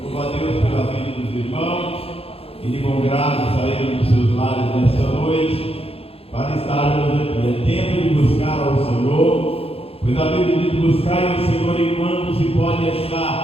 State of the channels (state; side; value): late; right; 0.28 ms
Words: Louvo a Deus pela vida dos irmãos e de bom grado saíram dos seus lares nesta noite para estarmos aqui. É tempo de buscar ao Senhor, pois a Bíblia diz: buscai o Senhor enquanto se pode